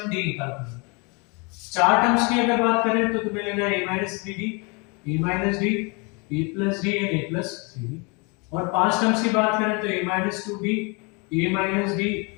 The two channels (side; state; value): right; quieter; 31.0 dB